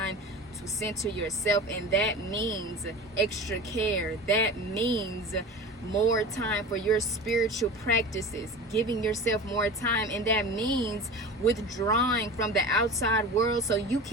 to center yourself. And that means extra care. That means more time for your spiritual practices, giving yourself more time. And that means withdrawing from the outside world so you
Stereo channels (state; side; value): normal; both; correlation 0.34